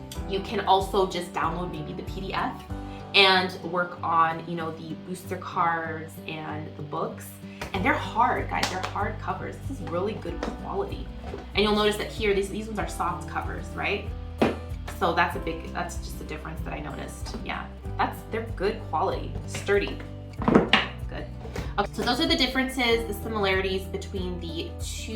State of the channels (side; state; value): both; identical; correlation 1.00